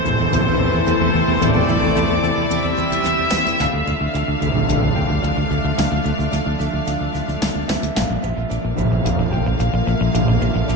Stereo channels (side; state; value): both; normal; correlation 0.34